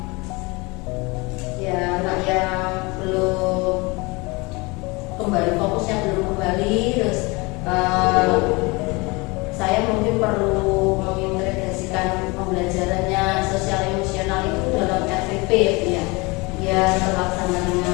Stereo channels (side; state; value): right; quieter; 25.9 dB